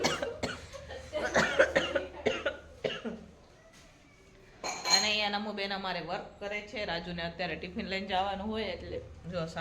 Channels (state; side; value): identical; both; correlation 1.00